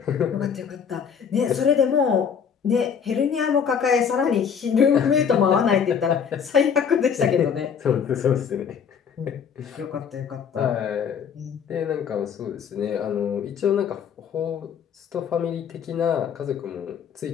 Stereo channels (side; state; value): right; quieter; 7.1 dB